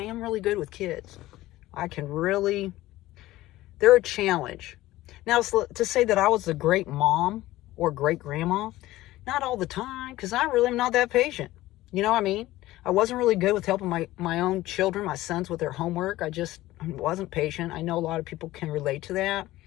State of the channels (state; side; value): quieter; right; 16.6 dB